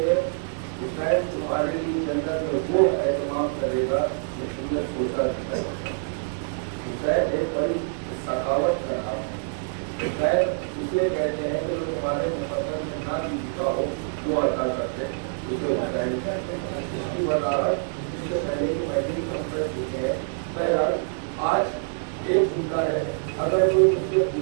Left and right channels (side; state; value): left; silent; digital silence